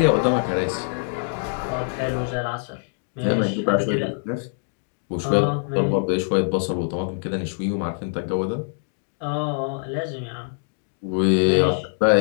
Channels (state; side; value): silent; right; digital silence